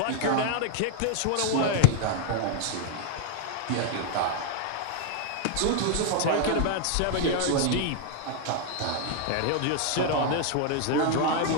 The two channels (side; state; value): both; different; correlation 0.00